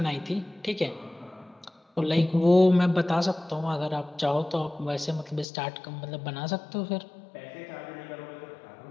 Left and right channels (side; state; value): right; drops out; at 5.5 s